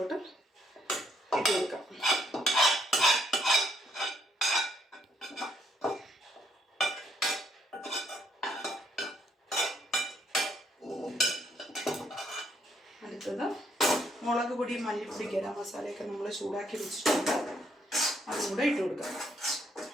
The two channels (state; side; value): normal; both; correlation 0.71